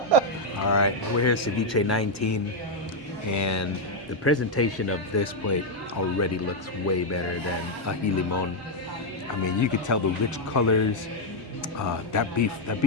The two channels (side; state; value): both; normal; correlation 0.00